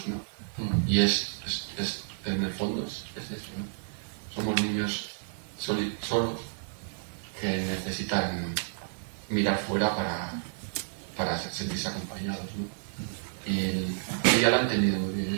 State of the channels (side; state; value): left; silent; digital silence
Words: ¿no? Y en el fondo es eso, ¿no? Somos niños solos que necesitan mirar fuera para sentirse acompañados, ¿no? Y ella lo ha entendido muy bien,